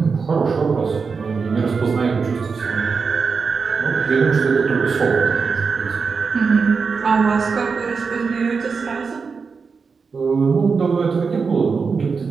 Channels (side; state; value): left; quieter; 5.2 dB